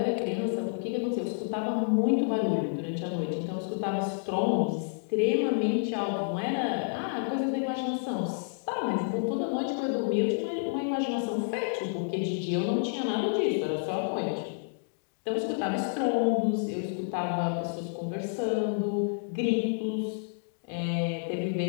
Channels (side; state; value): right; silent; digital silence